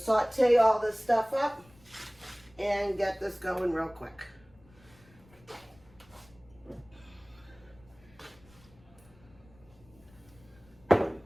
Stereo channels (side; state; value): left; noise; rumble, 27 dB below the sound